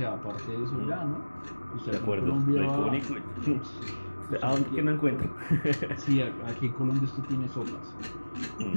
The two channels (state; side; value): inverted; both; correlation -1.00